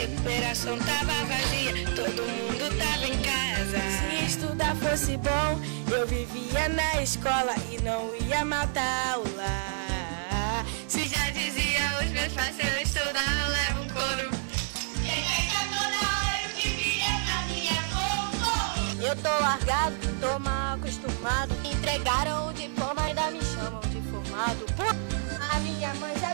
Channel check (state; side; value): silent; left; 59 dB below the other